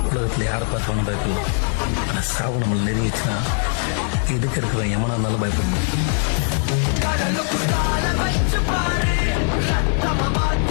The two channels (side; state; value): right; silent; 57 dB below the other